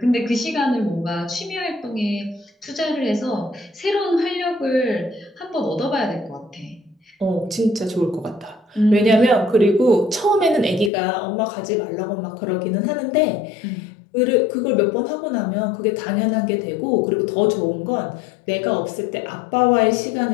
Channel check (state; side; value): drops out; right; at 10.9 s